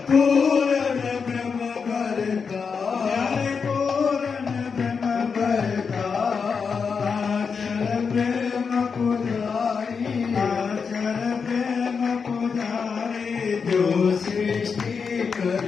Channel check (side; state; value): right; quieter; 5.7 dB